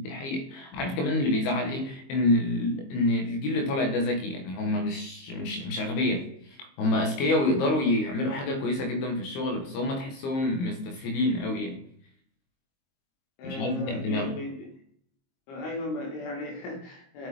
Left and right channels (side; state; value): right; late; 22 ms